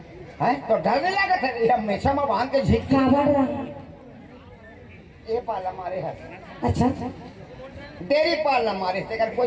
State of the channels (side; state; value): both; identical; correlation 1.00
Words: है तो डर नहीं लगा था ये हमेशा में बांध के झीक क्या बढ़ रहा ये पाला मारे हाथ अच्छा डेरी पालना मारे से कर